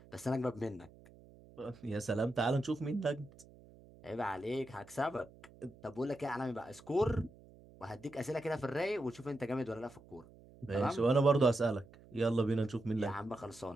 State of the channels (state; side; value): noise; right; hum, 22 dB below the sound